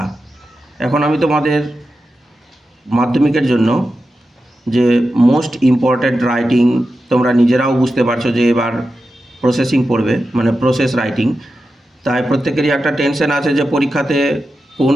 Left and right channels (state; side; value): normal; both; correlation 0.91